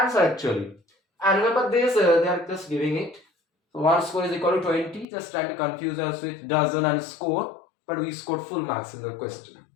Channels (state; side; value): drops out; right; at 5.1 s